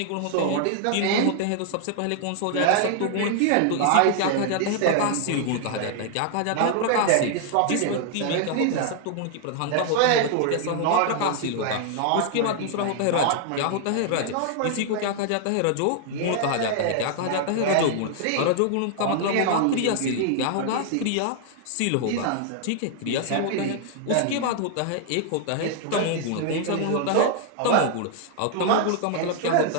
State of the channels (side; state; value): both; different; correlation 0.00